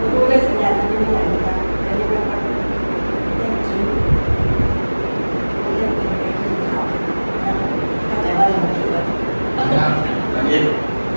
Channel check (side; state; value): both; inverted; correlation -1.00